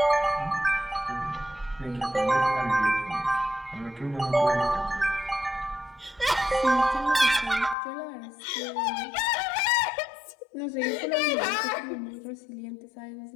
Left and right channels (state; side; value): drops out; right; at 7.8 s